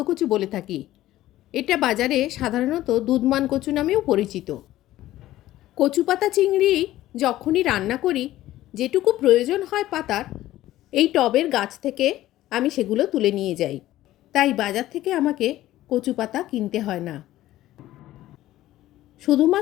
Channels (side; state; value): right; quieter; 14.9 dB